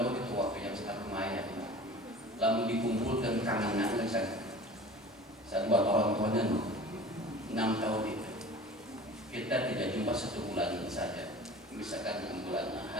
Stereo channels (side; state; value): both; normal; correlation 0.41